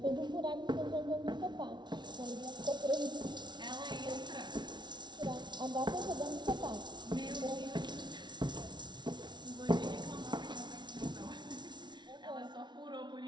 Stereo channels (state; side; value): late; left; 0.21 ms